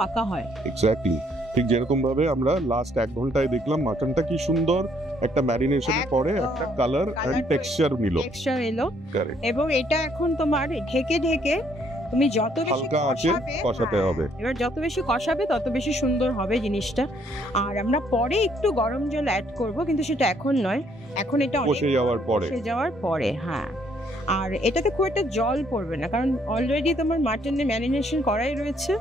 হয়। এক্স্যাক্টলি। ঠিক যেরকম ভাবে আমরা লাস্ট 1 ঘন্টায় দেখলাম মাটনটা কি সুন্দর একটা ম্যারিনেশনের একদম। পরে একটা কালার Colour এন্ড টেক্সচার নিল। টেক্সচার এলো, কারেক্ট। এবং এটা এখন তোমার ঢেকে ঢেকে তুমি যত বেশি হালকা আঁচে কষাতে হবে। এবার যত বেশি কষাবে তত বেশি সুন্দর হবে জিনিসটা। আর আমরা পরে একটু গরম জল অ্যাড করব, কিন্তু সেটা এখন নয়, এখন এটা কষে যাওয়ার পরে। হ্যাঁ। আর এটাতে খুব একটা জল পড়বে না, কারণ অলরেডি তোমার মাটনে ম্যারিনেশন করাই রয়েছে,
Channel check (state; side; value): normal; both; correlation 0.67